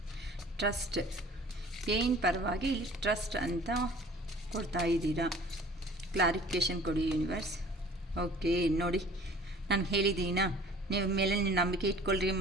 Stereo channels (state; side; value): normal; both; correlation 0.49